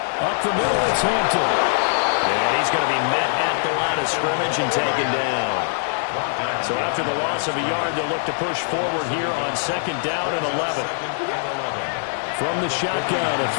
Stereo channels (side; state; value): right; silent; digital silence